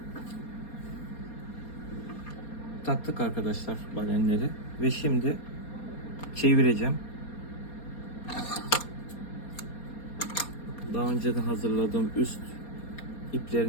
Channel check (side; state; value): right; late; 4.2 ms